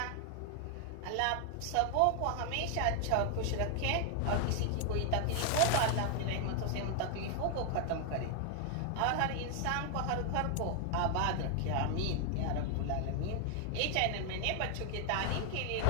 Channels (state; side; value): different; both; correlation 0.00